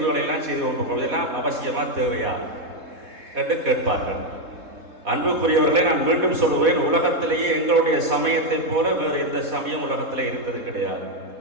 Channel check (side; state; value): left; late; 3.7 ms